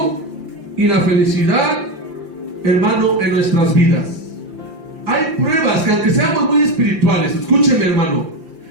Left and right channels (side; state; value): left; late; 5.8 ms